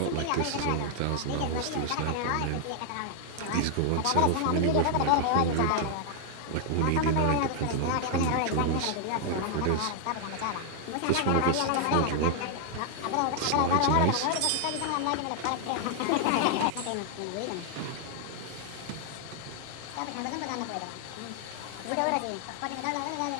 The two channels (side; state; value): both; different; correlation 0.00